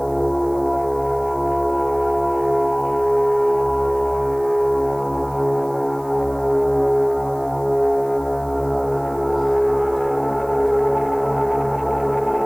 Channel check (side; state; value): right; noise; hiss, 26 dB below the sound